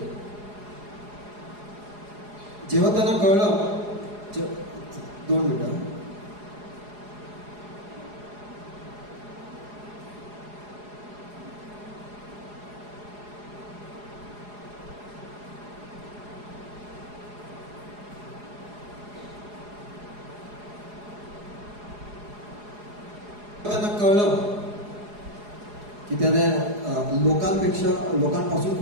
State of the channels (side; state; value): left; late; 4.8 ms